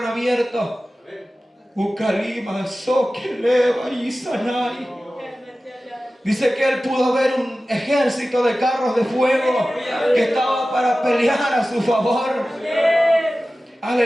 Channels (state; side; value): normal; both; correlation 0.96